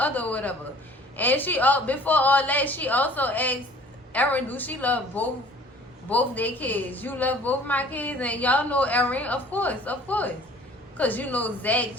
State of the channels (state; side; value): normal; both; correlation 0.51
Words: whatever. And she, before all that, she also asked Erin, do she love both their kids? You love both my kids? And y'all know Erin, of course. Because Zach